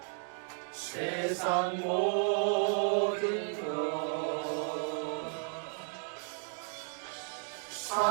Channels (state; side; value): silent; left; 55 dB below the other